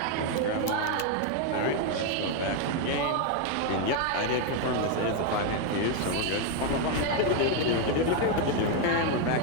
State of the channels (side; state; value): both; different; correlation 0.01